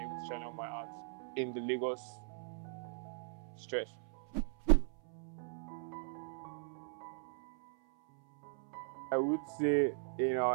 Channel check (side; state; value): left; silent; 52 dB below the other